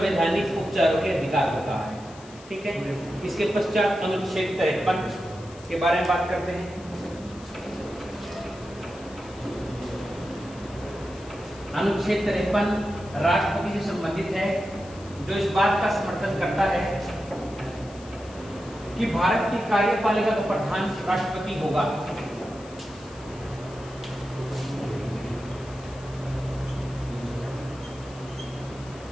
उपचारों के अधिकार को कहा है। ठीक है। इसके पश्चात अनुच्छेद 53 के बारे में बात करते हैं। अनुच्छेद 53 राष्ट्रपति से संबंधित है, जो इस बात का समर्थन करता है कि भारत की कार्यपालिका का प्रधान राष्ट्रपति होगा।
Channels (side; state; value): left; noise; hiss, 21 dB below the sound